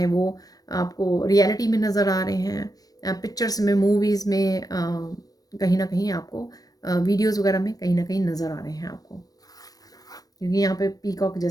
वो आपको रियलिटी में नज़र आ रहे हैं, पिक्चर्स में, मूवीज़ में, कहीं ना कहीं आपको वीडियोज़ वगैरह में कहीं ना कहीं नज़र आ रहे हैं आपको, क्योंकि यहाँ पे पीकॉक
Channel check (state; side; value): late; right; 0.18 ms